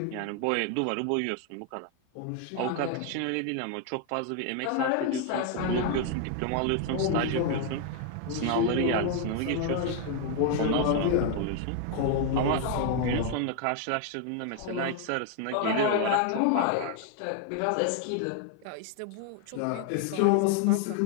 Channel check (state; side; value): different; both; correlation 0.00